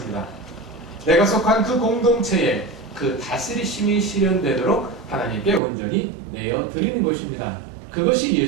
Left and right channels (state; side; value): drops out; left; at 5.6 s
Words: 내가 속한 그 공동체에 그 다스리심이 실현되도록 하나님께 온전히 내어드리는 것입니다. 그것이